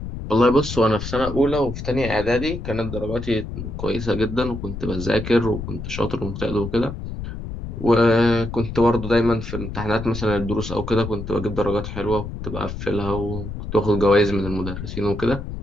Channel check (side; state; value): left; noise; rumble, 7 dB below the sound